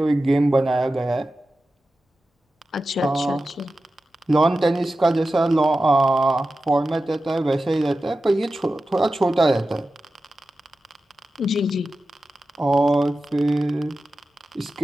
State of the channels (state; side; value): normal; both; correlation 0.93